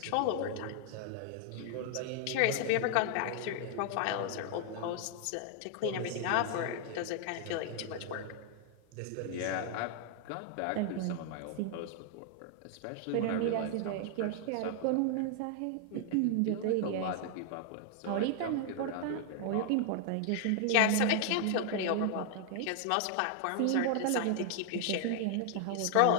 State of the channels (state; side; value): different; both; correlation 0.00